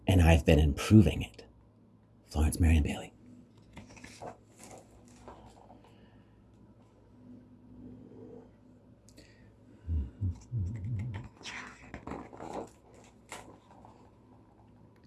and I've been improving it. Florence Merriam Bailey.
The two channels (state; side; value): identical; both; correlation 1.00